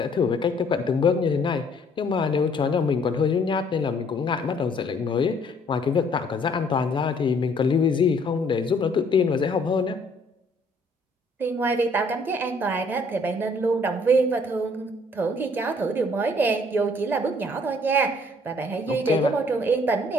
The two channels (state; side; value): normal; both; correlation 0.62